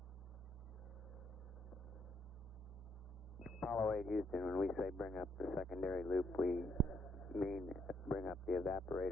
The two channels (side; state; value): both; normal; correlation 0.73